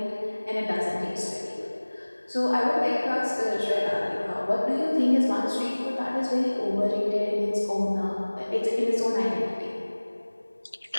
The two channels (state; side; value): inverted; both; correlation -1.00